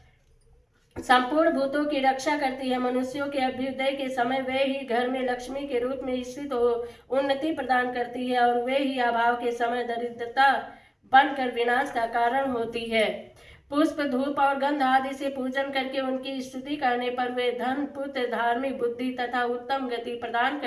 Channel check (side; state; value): both; identical; correlation 1.00